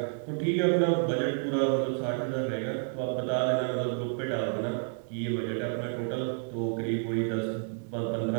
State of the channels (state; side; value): silent; left; 58 dB below the other